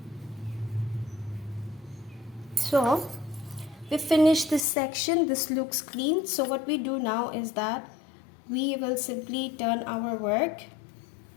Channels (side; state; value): right; drops out; at 4.7 s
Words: So we finished this section. This looks clean. So what we do now is that we will simply turn our work